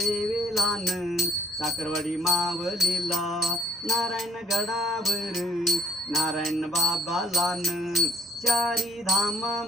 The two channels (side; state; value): both; normal; correlation 0.60